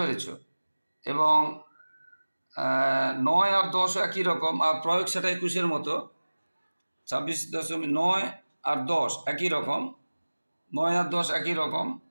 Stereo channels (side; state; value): both; inverted; correlation -1.00